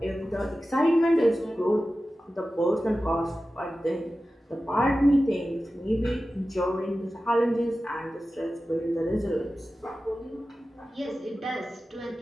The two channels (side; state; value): both; normal; correlation 0.94